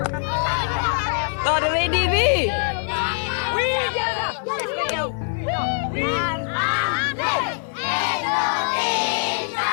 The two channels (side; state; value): right; silent; 56 dB below the other